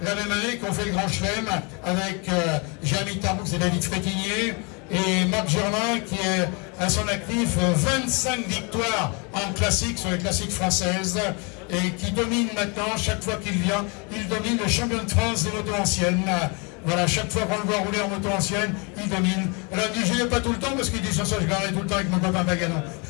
la même année, qui ont fait le Grand Chelem avec Jérémy Tarboux et David Frétinier, et Marc Germain qui est à son actif 25 victoires en classique sur les classiques françaises et qui domine maintenant, chaque fois qu'il vient, il domine le champion de France des motos anciennes. Voilà, chaque fois qu'on le voit rouler en moto ancienne, il domine. Alors il dit, je n'ai pas tout le temps parce qu'il dit, ça, je garderai tout le temps avec mon copain Baganon.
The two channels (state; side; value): quieter; right; 31.9 dB